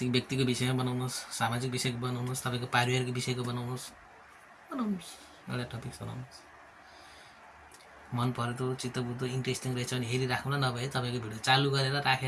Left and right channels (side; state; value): both; identical; correlation 1.00